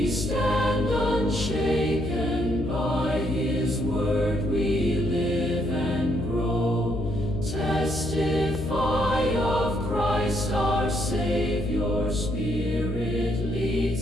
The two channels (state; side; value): noise; left; hum, 5 dB below the sound